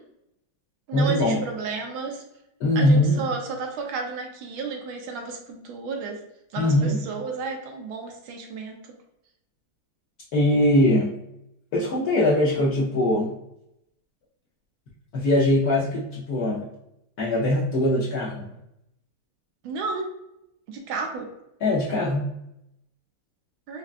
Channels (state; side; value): normal; both; correlation 0.29